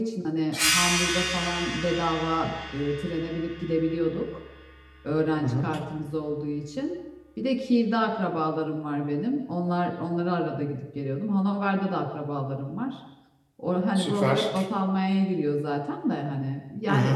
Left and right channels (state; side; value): identical; both; correlation 1.00